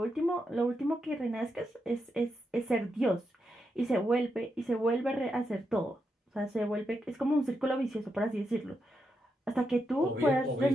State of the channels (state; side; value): normal; both; correlation 0.84